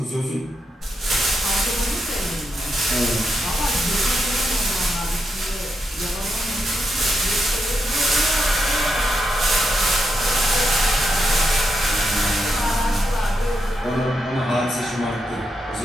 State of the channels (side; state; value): both; normal; correlation 0.83